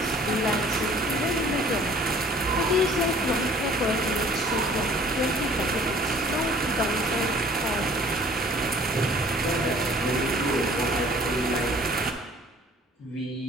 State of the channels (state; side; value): normal; both; correlation 0.53